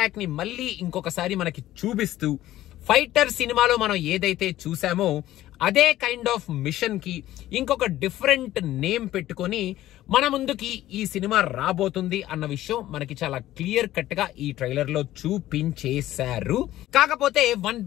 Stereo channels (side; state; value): right; quieter; 14.4 dB